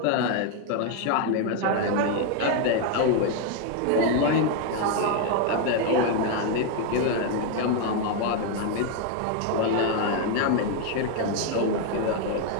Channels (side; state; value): both; different; correlation 0.01